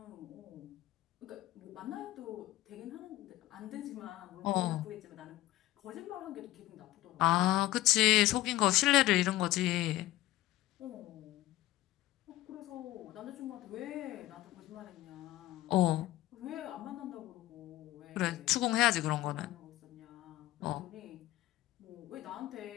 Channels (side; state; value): right; quieter; 16.2 dB